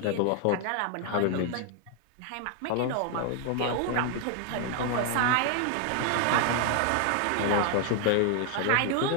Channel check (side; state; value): both; different; correlation 0.00